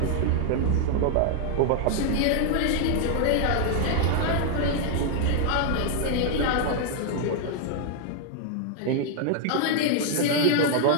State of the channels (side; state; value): both; different; correlation 0.00